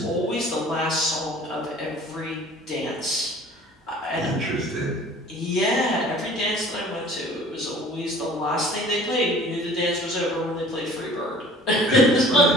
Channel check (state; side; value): normal; both; correlation 0.48